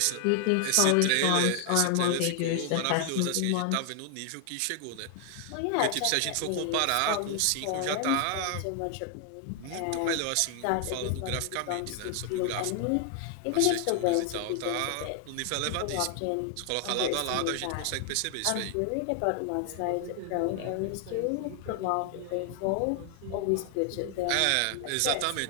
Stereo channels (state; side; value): different; both; correlation 0.00